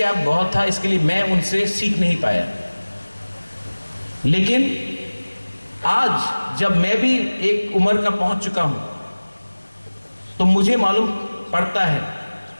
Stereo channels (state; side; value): inverted; both; correlation -1.00